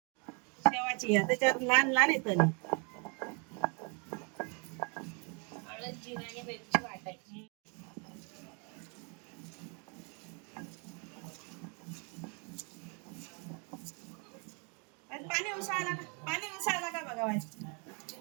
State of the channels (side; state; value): left; quieter; 35.4 dB